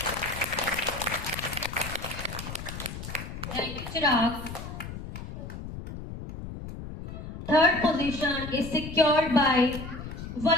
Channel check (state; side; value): noise; left; rumble, 9 dB below the sound